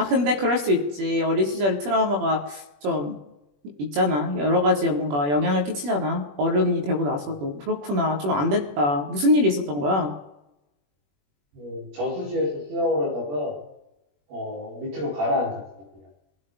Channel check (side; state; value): left; late; 21 ms